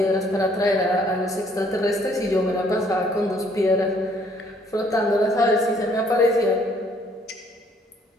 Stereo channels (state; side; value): normal; both; correlation 0.63